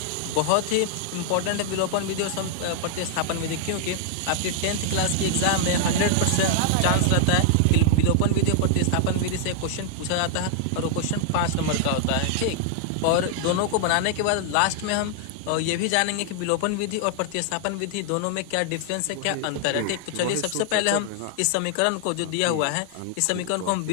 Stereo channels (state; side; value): different; both; correlation 0.00